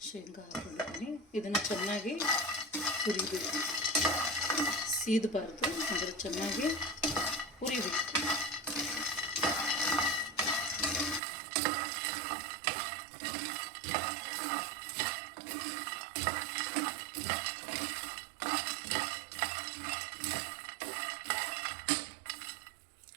ಶೇಂಗಾ ಹಾಕೊಂಡಿದ್ದೀನಿ. ಇದನ್ನು ಚೆನ್ನಾಗಿ ಹುರಿಬೇಕು, ಸೀದಬಾರ್ದು, ಆದರೆ ಚೆನ್ನಾಗಿ ಹುರಿಬೇಕು.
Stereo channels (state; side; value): drops out; left; at 11.2 s